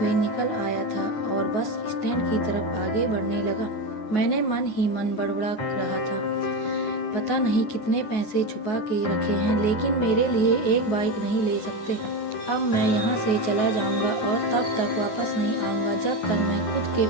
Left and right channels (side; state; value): right; late; 9.4 ms